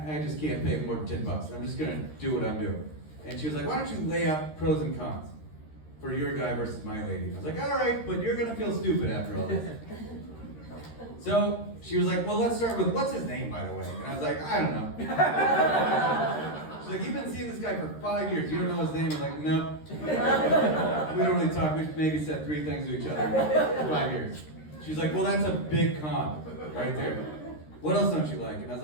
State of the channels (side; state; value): right; late; 13 ms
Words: just can't pay more than $10. I'm just gonna do what I'm doing. And she was like, why don't you lay out pros and cons for your guy versus my lady? I was like, all right, but you're gonna feel stupid after all this. So she was like, well, let's start with, what's his name, by the way? And I was like, I don't know. She's like, you've been seeing this guy for 5 years. You don't know his name? I was like, no. We don't really talk. We've maybe said 3 things to each other in 5 years. She's like, well, that's a big con right there. What else don't you like? And I was